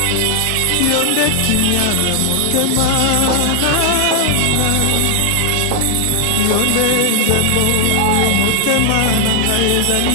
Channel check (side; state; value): both; different; correlation 0.00